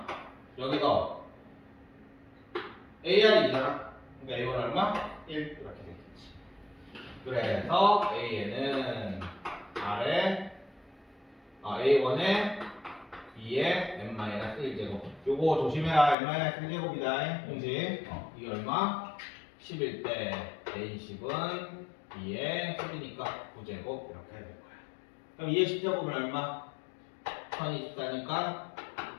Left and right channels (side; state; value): right; drops out; at 16.2 s